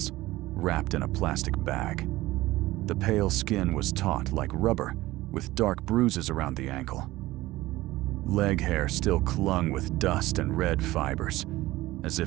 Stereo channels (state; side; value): quieter; left; 17.7 dB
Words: wrapped in a plastic bag. The pale skin was taut like rubber, with dark bruises around the ankle. Leg hair still clung with dust and red fibers, as